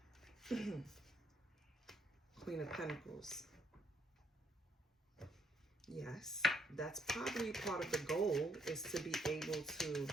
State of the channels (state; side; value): normal; both; correlation 0.71